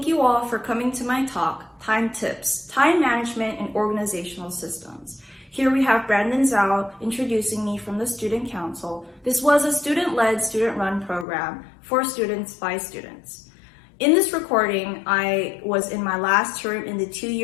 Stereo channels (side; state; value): right; drops out; at 11.2 s